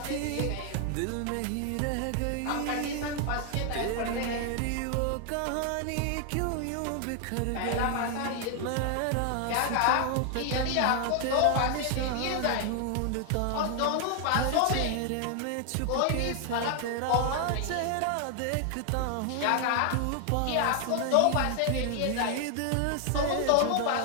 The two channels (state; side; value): different; both; correlation 0.00